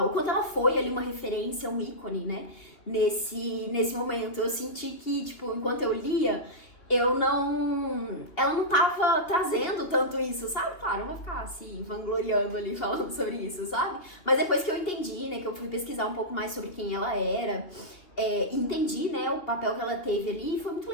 ela foi ali uma referência, um ícone, né, nesse momento. Eu senti que, tipo, enquanto eu lia, ela não tava trazendo tanto isso, sabe? Claro, eu vou ficar assim, vangloriando ali, falando sobre isso, sabe? Mas depois que eu entendi, né, que eu fui pesquisar um pouco mais sobre quem ela era, entendi, né, o papel que ela teve ali, e foi muito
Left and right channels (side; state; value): right; late; 3.0 ms